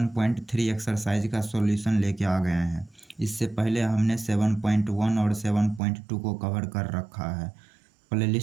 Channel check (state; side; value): drops out; left; at 5.8 s